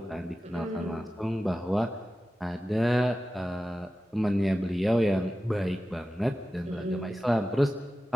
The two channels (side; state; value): both; normal; correlation 0.94